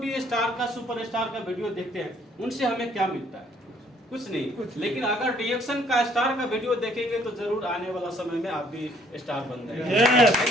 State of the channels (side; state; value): both; normal; correlation 0.63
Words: स्टार का, सुपरस्टार का वीडियो देखते हैं, उनसे हमें क्या मिलता है? कुछ नहीं। लेकिन अगर DXN का स्टार का वीडियो देखेंगे तो जरूर आने वाला समय में आप भी स्टार बन